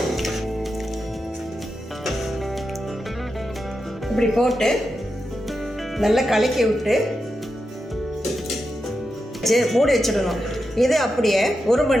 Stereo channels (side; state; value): both; normal; correlation 0.88